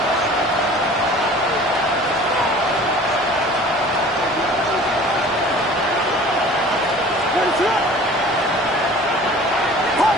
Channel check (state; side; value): normal; both; correlation 0.45